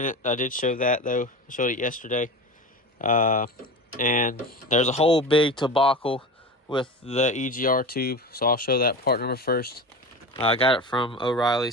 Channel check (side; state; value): both; normal; correlation 0.28